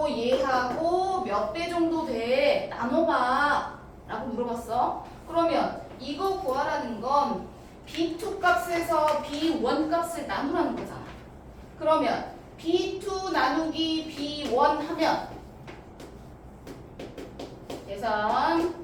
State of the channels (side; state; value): both; identical; correlation 1.00